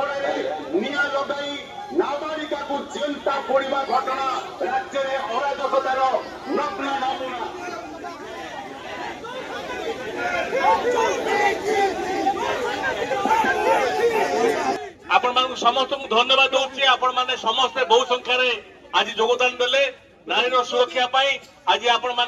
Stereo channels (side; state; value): both; identical; correlation 1.00